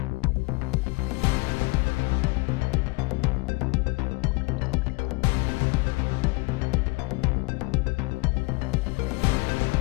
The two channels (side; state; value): right; quieter; 25.6 dB